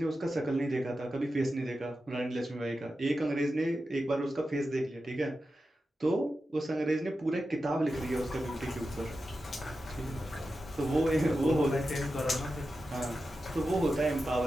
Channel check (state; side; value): normal; both; correlation 0.91